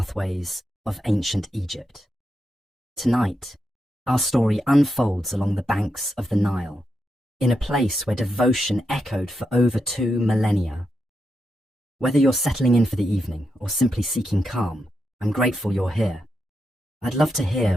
of ancient Egypt. Tonight, our story unfolds along the banks of the Nile, in a place where devotion echoed for over 2 millennia. Whether you're settling in for the evening or simply seeking calm, I'm grateful you're here. I'd love to hear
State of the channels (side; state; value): both; normal; correlation 0.85